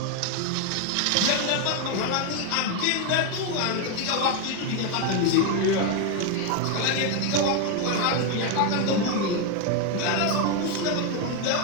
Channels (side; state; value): both; different; correlation 0.01